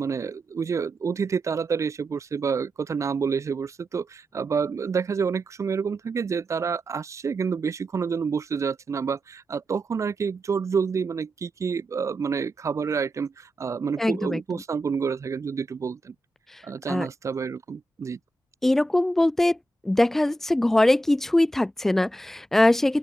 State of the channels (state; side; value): normal; both; correlation 0.88